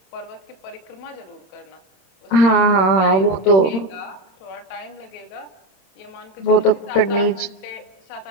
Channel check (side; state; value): right; late; 26 ms